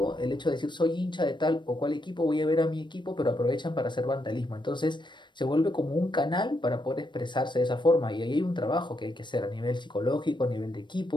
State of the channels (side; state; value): right; late; 0.22 ms